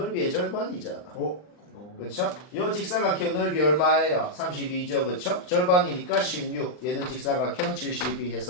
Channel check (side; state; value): right; late; 39 ms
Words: 절반이잖아. 그렇죠? 요 직사각형 넓이 얼마예요? 32죠, 그렇죠? 절반이니까 16. 얘는 직사각형 72